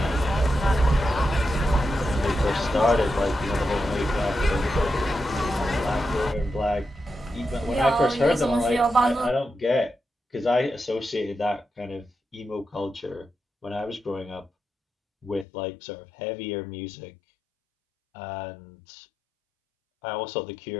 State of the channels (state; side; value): drops out; right; at 15.5 s